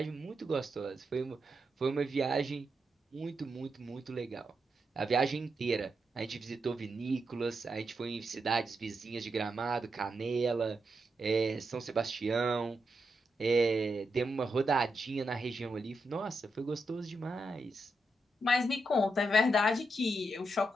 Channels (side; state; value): both; normal; correlation 0.84